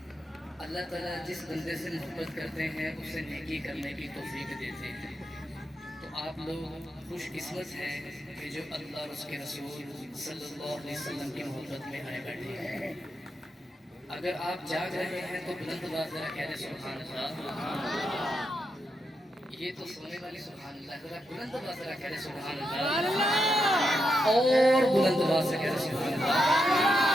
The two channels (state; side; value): normal; both; correlation 0.84